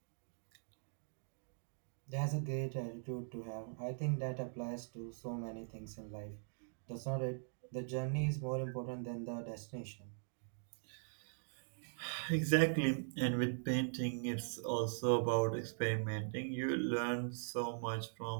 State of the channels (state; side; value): silent; left; digital silence